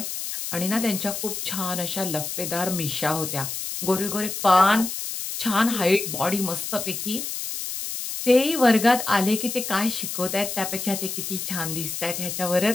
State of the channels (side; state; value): left; noise; hiss, 5 dB below the sound